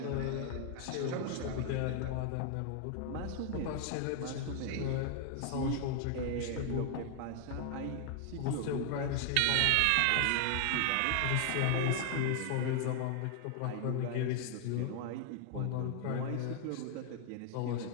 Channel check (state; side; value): different; both; correlation 0.00